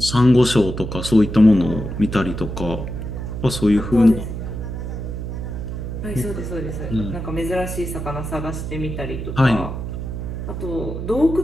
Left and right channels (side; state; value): right; noise; hum, 6 dB below the sound